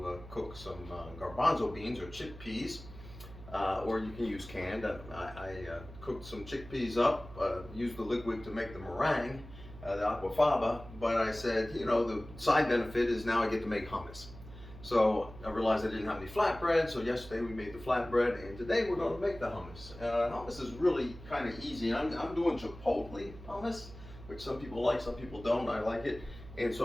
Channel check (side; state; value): right; noise; hum, 16 dB below the sound